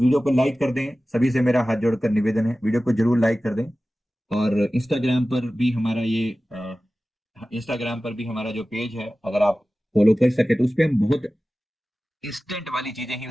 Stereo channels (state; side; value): normal; both; correlation 0.96